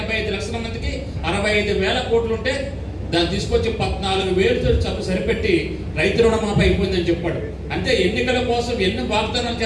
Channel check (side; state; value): both; identical; correlation 1.00